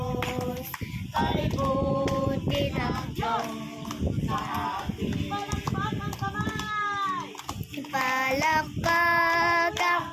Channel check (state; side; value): identical; both; correlation 1.00